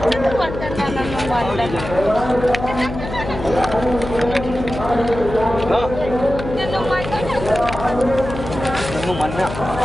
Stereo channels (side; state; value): left; noise; hum, 8 dB below the sound